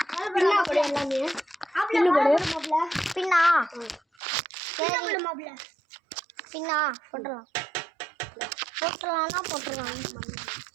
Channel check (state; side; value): drops out; left; at 4.0 s